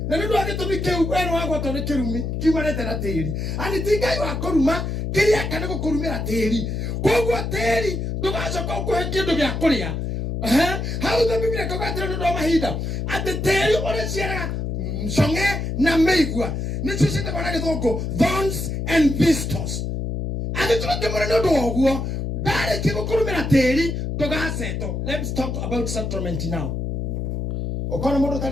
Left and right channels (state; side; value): noise; left; hum, 3 dB below the sound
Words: na nĩ ũndũ wa gĩtũmi kĩu we nĩ wagwatwo nĩ kĩrumi kiumanĩte na tĩri ani ti Ngai wa kũruma kĩrĩa kana gũkũrumĩra tĩri koguo tĩri ndũgacoka ũkũhe kĩndũ gĩa kũrĩa Hau the Biblia kokatira ndo mahinda ate teri ore ciara songe na meigua nicio cite bana githongo thorns and thistles ate tuke mwana ndo oguo dare kigukurumira teri dogaseto. Let's talk about settlement now. Okona mundu